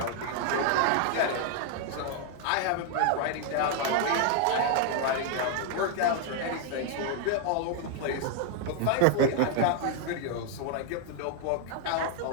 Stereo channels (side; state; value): both; different; correlation 0.00